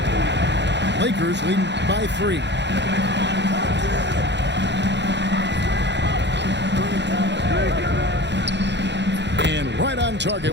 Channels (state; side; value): late; left; 0.51 ms